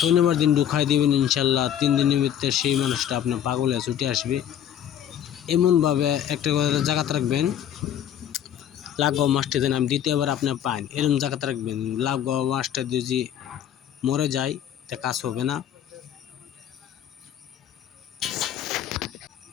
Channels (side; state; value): right; quieter; 10.1 dB